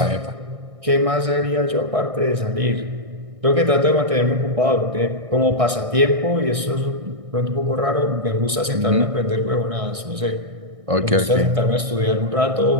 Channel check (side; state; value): left; late; 1.6 ms